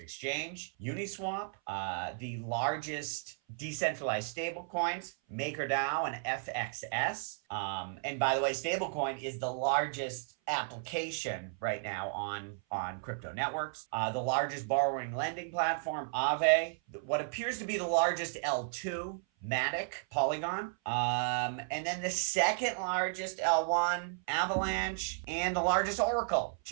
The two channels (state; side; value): silent; left; 55 dB below the other